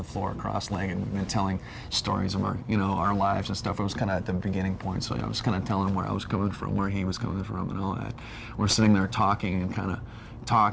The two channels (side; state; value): both; identical; correlation 1.00